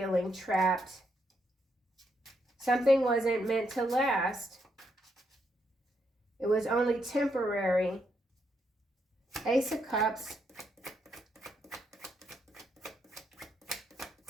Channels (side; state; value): both; normal; correlation 0.78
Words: trapped. Something wasn't meant to last. It was only temporary. Ace of Cups.